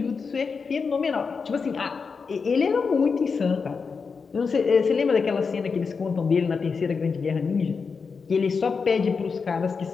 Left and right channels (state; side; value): quieter; right; 5.2 dB